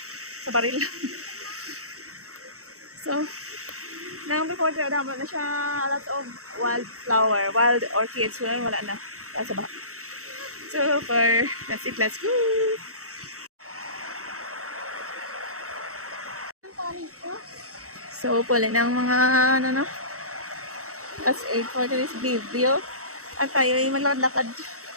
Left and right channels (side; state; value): left; late; 0.65 ms